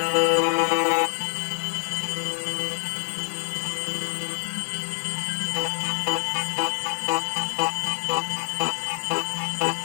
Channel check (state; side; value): silent; right; digital silence